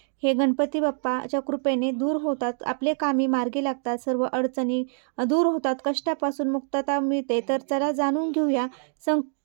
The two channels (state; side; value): silent; left; digital silence